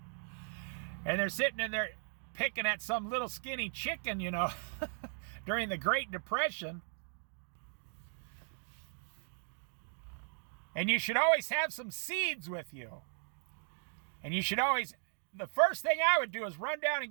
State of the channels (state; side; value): silent; left; digital silence